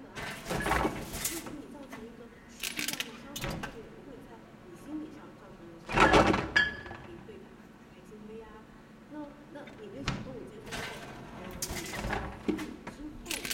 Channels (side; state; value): both; identical; correlation 1.00